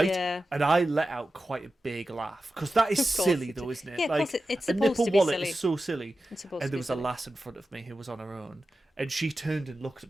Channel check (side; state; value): both; normal; correlation 0.93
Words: yeah. And I let out quite a big laugh because that is Of course silly, you though, do. isn't it? Yeah, of like course it's a supposed nipple to be wallet silly. is so silly. It's supposed And to there be was a silly. lass in front of me who was on her own, and she turned and looked